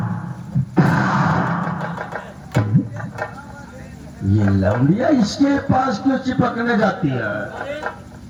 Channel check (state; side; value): identical; both; correlation 1.00